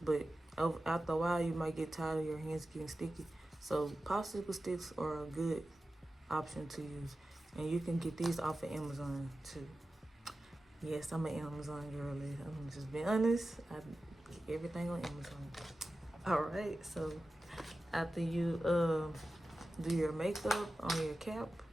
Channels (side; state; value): both; normal; correlation 0.94